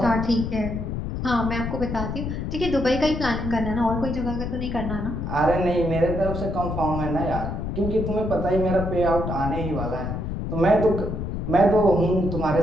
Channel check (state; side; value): noise; left; rumble, 4 dB below the sound